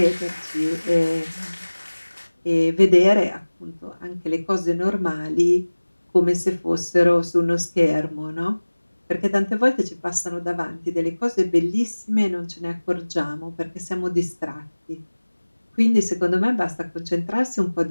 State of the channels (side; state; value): both; inverted; correlation -1.00